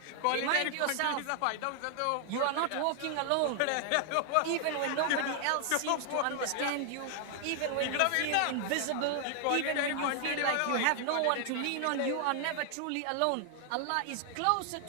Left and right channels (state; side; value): different; both; correlation 0.00